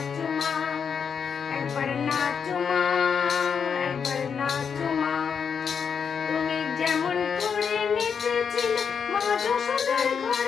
মা, একবার নাচো মা, একবার নাচো মা। তুমি যেমন করে নেচেছিলে মা যশোদার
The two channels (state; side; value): quieter; right; 6.7 dB